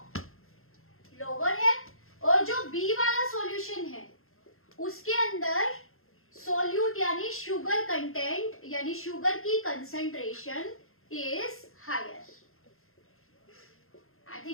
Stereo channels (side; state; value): right; late; 0.61 ms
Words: लोअर है, और जो बी वाला सॉल्यूशन है उसके अंदर सोल्यूट यानी शुगर कंटेंट यानी शुगर की concentration is higher. I